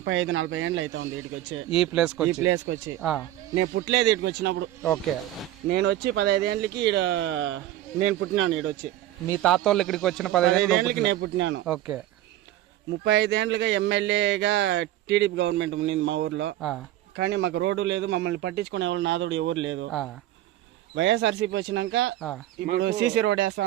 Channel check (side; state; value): left; quieter; 13.9 dB